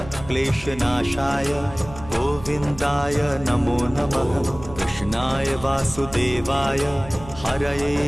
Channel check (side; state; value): right; noise; hum, 15 dB below the sound